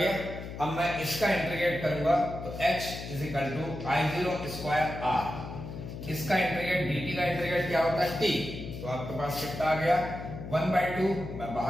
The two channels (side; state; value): left; noise; hum, 9 dB below the sound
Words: अब मैं इसका इंटीग्रेट करूंगा तो h is equal to I0 square r, इसका इंटीग्रेट dt का इंटीग्रेट क्या होता है t, तो आपके पास कितना आ गया 1/2, मैं